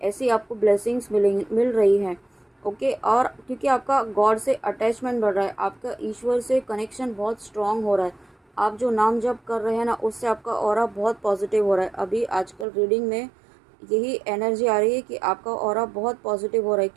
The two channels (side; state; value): left; drops out; at 12.7 s